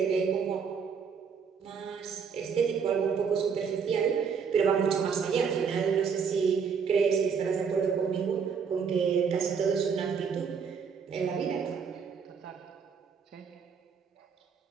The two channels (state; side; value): quieter; left; 6.3 dB